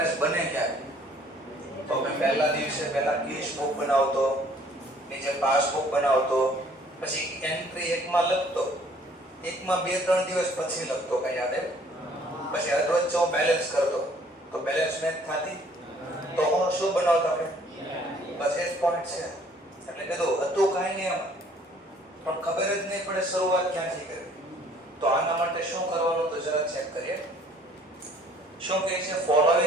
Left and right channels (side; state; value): both; normal; correlation 0.58